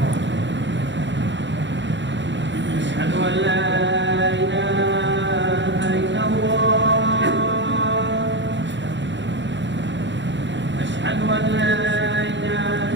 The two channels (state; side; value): late; left; 0.53 ms